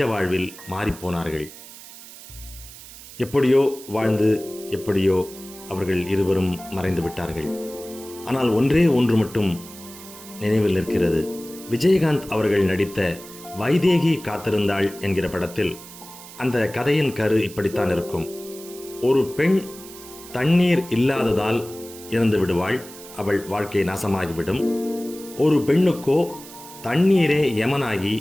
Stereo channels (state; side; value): noise; right; hiss, 17 dB below the sound